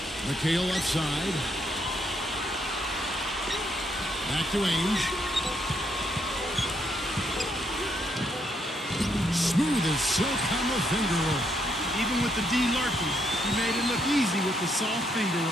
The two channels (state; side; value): normal; both; correlation 0.75